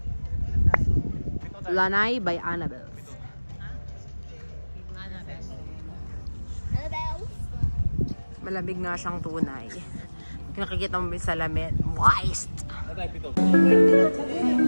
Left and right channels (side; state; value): both; inverted; correlation -1.00